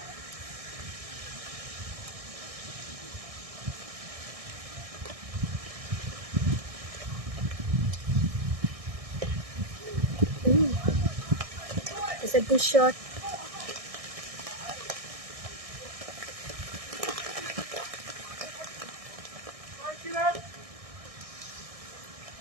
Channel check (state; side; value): late; left; 1.6 ms